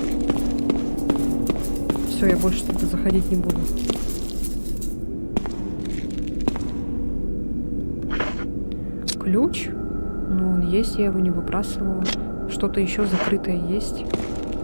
Все, я больше туда заходить не буду. Ключ? Ну, он есть, я его не выбрасывала. Что-то еще закрытое есть.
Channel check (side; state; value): both; inverted; correlation -1.00